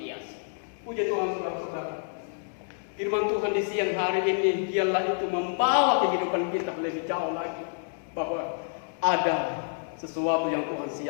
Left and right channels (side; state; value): right; silent; digital silence